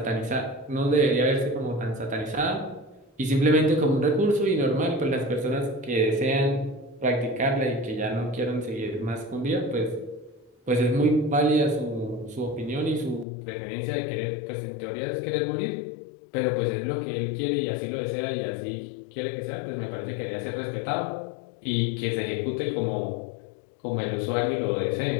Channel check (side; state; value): right; drops out; at 13.2 s